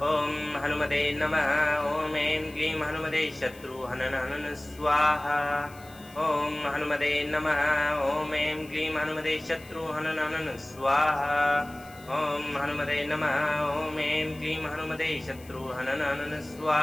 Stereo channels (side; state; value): left; noise; hiss, 23 dB below the sound